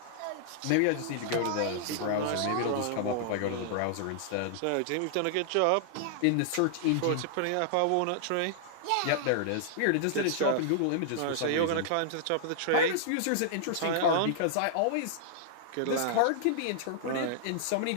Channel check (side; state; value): both; different; correlation -0.01